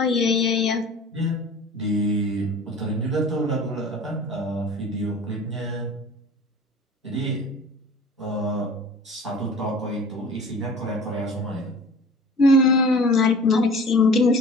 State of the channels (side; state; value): both; normal; correlation 0.42